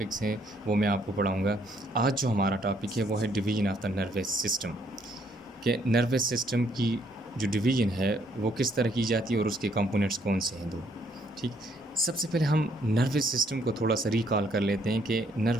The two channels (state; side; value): normal; both; correlation 0.68